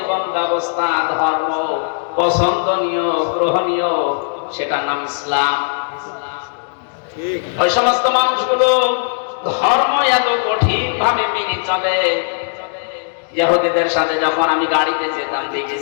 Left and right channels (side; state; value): right; silent; digital silence